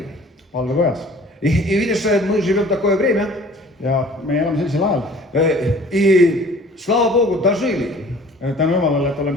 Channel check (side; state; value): both; normal; correlation 0.50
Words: Valvekojas. И видишь, мы живем в такое время, Ja me elame sellisel ajal. и слава Богу, дожили. Tänu Jumalale, et